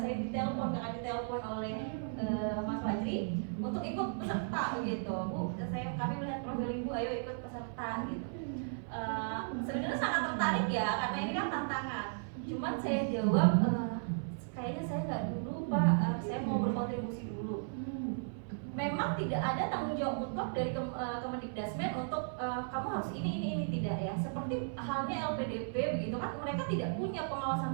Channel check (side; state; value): left; silent; 54 dB below the other